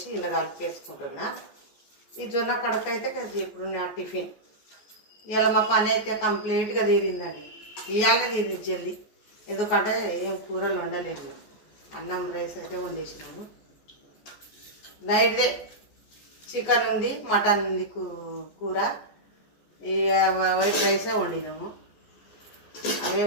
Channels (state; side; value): late; right; 14 ms